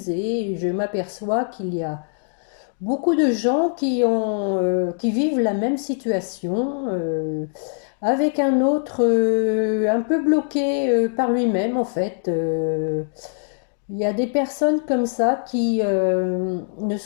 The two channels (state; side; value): silent; right; digital silence